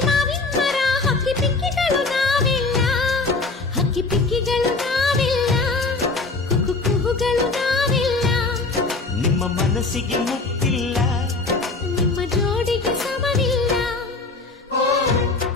ಮಾವಿನ ಮರ, ಹಕ್ಕಿ ಪಿಕ್ಕಿಗಳು ನಾವೆಲ್ಲ, ಹಕ್ಕಿ ಪಿಕ್ಕಿಗಳು ನಾವೆಲ್ಲ, ಕುಹು ಕುಹುಗಳು ನಾವೆಲ್ಲ. ನಿಮ್ಮ ಮನಸ್ಸಿಗೆ ಮುಟ್ಟಿಲ್ಲ, ನಿಮ್ಮ ಜೋಡಿಗೆ ಸಮವಿಲ್ಲ.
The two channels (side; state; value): right; quieter; 3.7 dB